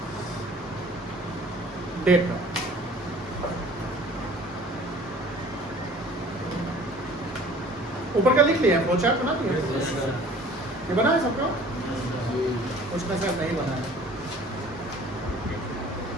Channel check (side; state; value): both; normal; correlation 0.48